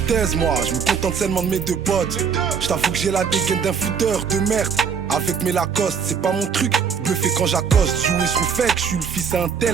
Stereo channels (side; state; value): left; quieter; 6.7 dB